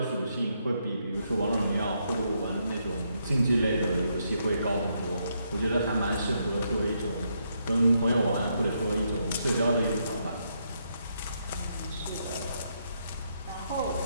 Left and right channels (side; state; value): both; inverted; correlation -0.77